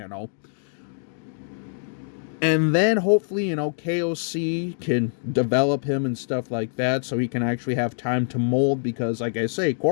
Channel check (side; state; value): right; silent; digital silence